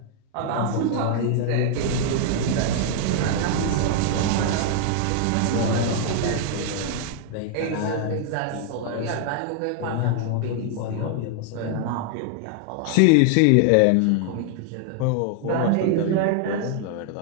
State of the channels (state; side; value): different; both; correlation 0.00